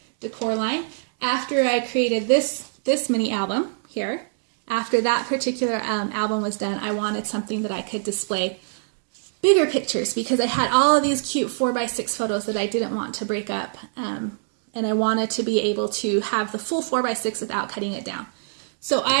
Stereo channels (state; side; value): silent; left; digital silence